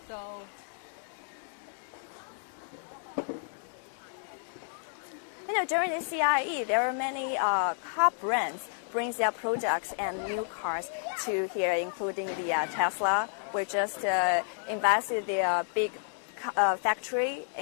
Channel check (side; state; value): right; silent; digital silence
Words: You know, during the CIE, there are many car brands brings their products and new cars to here, including the Tesla. We just invested the big factory